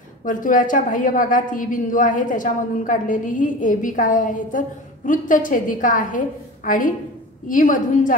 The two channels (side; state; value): both; normal; correlation 0.33